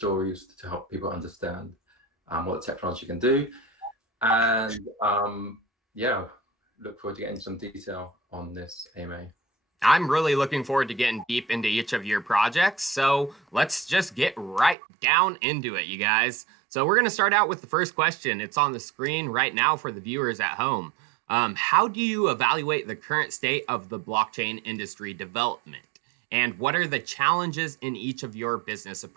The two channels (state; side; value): drops out; left; at 14.8 s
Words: to help people understand what the technology can do. And yeah, look forward to getting some detail on this AMA. I'm really looking forward to getting deep into each of your projects. So let's just get right down into it, you guys. So we're going to start out with the first question. It's on the screen right now for the viewers at home. How do you evaluate the current state of the blockchain industry development? And what are the challenges in each of your business